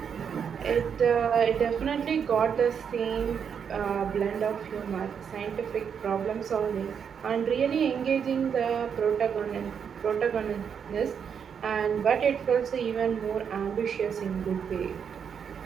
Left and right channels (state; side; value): quieter; left; 7.3 dB